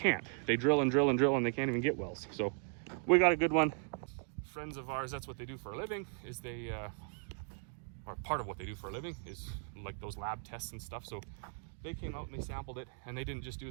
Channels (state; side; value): silent; left; 53 dB below the other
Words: They drill and drill and drill, and they can't even get wells. So we got a good one. Friends of ours, that's what they do for a living, is they, or part of what they do for a living is like those lab tests and stuff. So they came out and they sampled it, and they didn't just